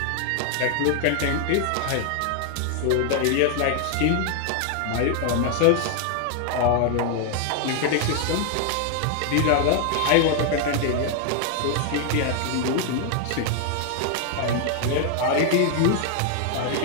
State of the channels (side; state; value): both; different; correlation 0.00